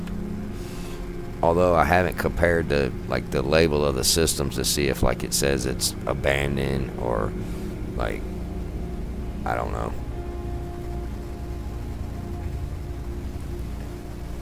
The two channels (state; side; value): identical; both; correlation 1.00